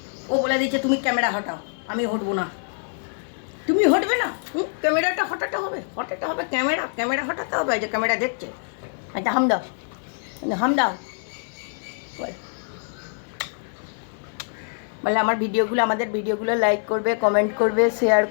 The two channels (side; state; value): right; silent; 62 dB below the other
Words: ও বলে দিচ্ছে তুমি ক্যামেরা হটাও। আমি হটবো না, তুমি হটবে না। ক্যামেরাটা হটাতে হবে, ক্যামেরা হটাতে হবে। যে ক্যামেরা দেখছে, আচ্ছা হাম দাও বলে আমাদের ভিডিওগুলো লাইক করবে, কমেন্ট করবে, শেয়ার